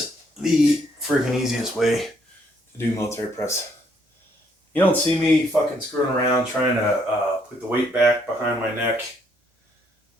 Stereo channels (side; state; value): both; normal; correlation 0.70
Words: the freaking easiest way to do military press. You don't see me fucking screwing around trying to put the weight back behind my neck,